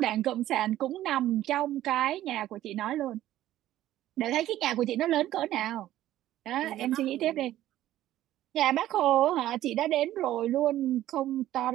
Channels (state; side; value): quieter; left; 13.7 dB